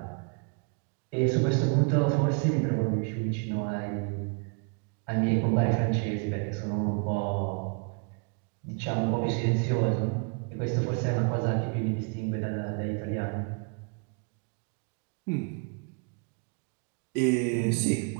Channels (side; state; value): left; quieter; 36.7 dB